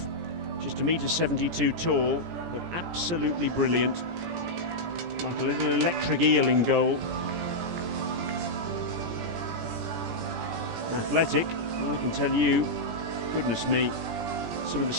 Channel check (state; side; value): late; left; 17 ms